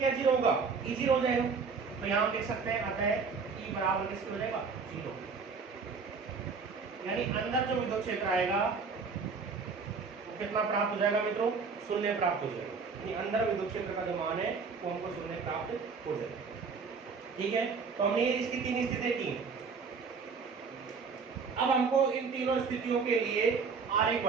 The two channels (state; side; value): quieter; left; 5.1 dB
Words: 0 होगा, ई 0 हो जाएगा। तो यहाँ हम लिख सकते हैं अतः ई बराबर किसके हो जाएगा, 0। यानी अंदर जो विद्युत क्षेत्र आएगा वो कितना प्राप्त हो जाएगा मित्रों, शून्य प्राप्त हो जाएगा। यानी अंदर विद्युत क्षेत्र का जो मान है वो हमको शून्य प्राप्त हो जाएगा। ठीक है, तो हमने इसकी 3 स्थितियां की। अब हमको इन तीनों स्थितियों के लिए आरेख